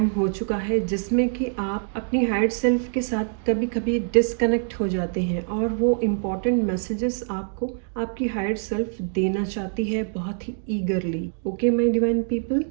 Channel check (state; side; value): silent; left; digital silence